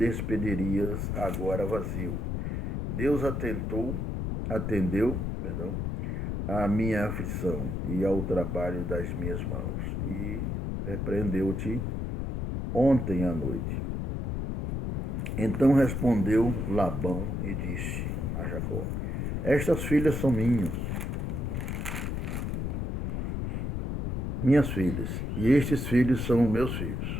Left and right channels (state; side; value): noise; left; rumble, 2 dB below the sound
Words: agora vazio. Deus atendeu à minha aflição e ao trabalho das minhas mãos, e repreendeu-te ontem à noite. Então respondeu Labão e disse a Jacó: estas filhas são minhas filhas, e estes filhos são meus